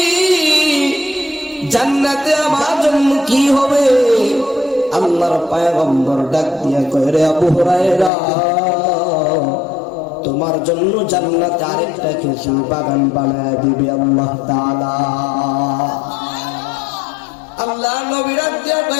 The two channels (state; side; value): drops out; right; at 8.1 s